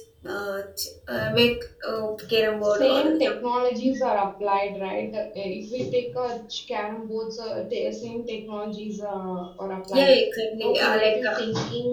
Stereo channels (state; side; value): identical; both; correlation 1.00